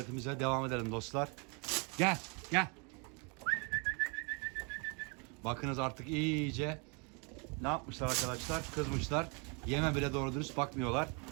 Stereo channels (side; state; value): left; quieter; 33.8 dB